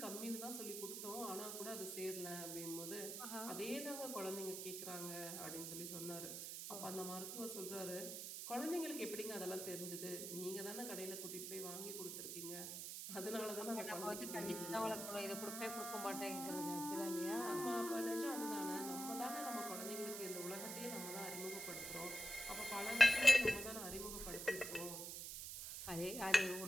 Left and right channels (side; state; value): right; noise; hiss, 5 dB below the sound